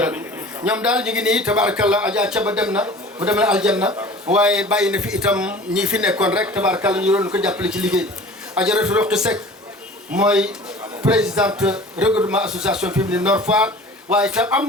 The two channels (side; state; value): both; normal; correlation 0.42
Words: ñoom daal ñu ngi nii tabaarakallah Adja Caba dem na mu dem na aljanna waaye bàyyi na fi itam ñi fi nekkoon rek tabaarakallah ñu doon ko jàppale ci liggéey bi Adjaratou Roqi Seck mooy présidente regroupement association féminine Nord Foire waaye itam am